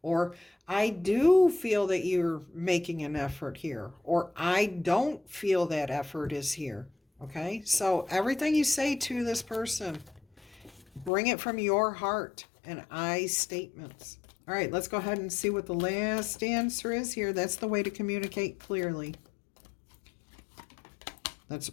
or I do feel that you're making an effort here, or I don't feel that effort is here. Okay? So everything you say to this person, bring it from your heart and I statements. All right, let's go ahead and see what the last answer is here. That's the way to communicate clearly. That's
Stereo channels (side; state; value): right; drops out; at 11.1 s